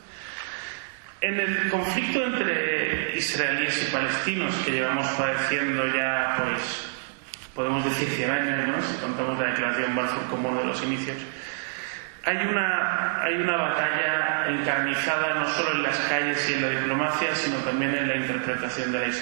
En el conflicto entre israelíes y palestinos que llevamos padeciendo ya, pues, podemos decir 100 años, ¿no?, si contamos la declaración Balfour como uno de los inicios, hay una batalla encarnizada no solo en las calles y en la diplomacia, sino también en la interpretación de la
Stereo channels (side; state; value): left; silent; digital silence